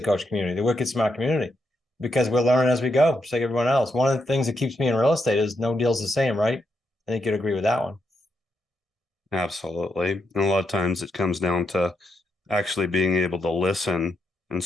Coach community, the Wicked Smart community, because we're learning as we go, just like everyone else. One of the things that keeps me in real estate is no deal's the same, right? I think you'd agree with that one. Absolutely. And a lot of times it comes down to actually being able to listen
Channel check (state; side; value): normal; both; correlation 0.81